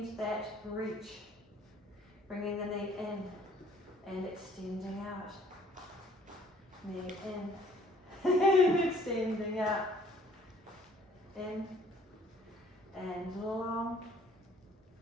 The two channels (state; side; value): normal; both; correlation 0.59